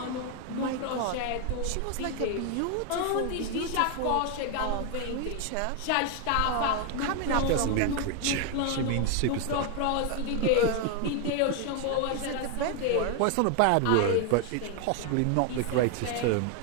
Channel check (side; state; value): both; different; correlation 0.01